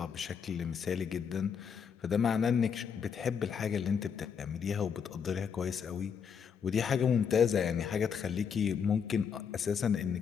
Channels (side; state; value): right; quieter; 6.9 dB